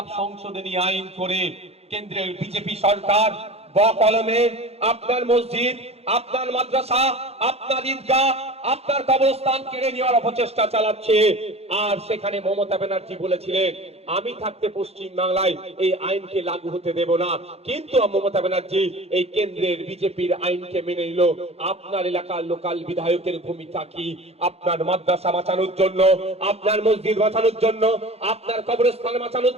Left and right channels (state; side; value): late; left; 0.30 ms